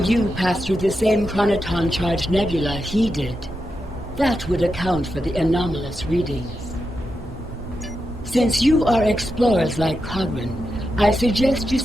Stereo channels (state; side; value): normal; both; correlation 0.87